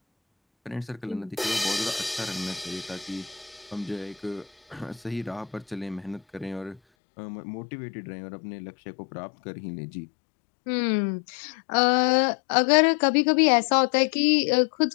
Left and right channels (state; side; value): drops out; right; at 6.8 s